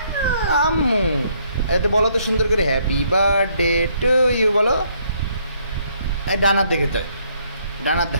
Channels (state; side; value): inverted; both; correlation -0.69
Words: আম্মু। এটা বলো তো সুন্দর করে, হ্যাপি বার্থডে টু ইউ বলো। ডানার দেখে তো, ডানার